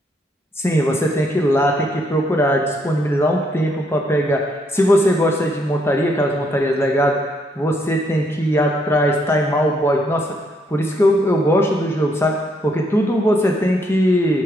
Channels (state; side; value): normal; both; correlation 0.72